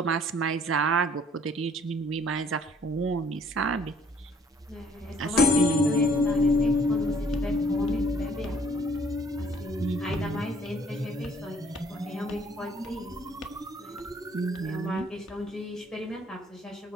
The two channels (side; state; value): both; normal; correlation 0.59